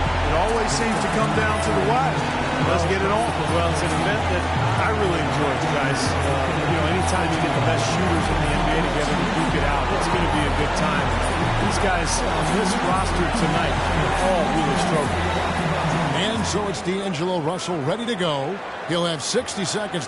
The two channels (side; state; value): both; identical; correlation 1.00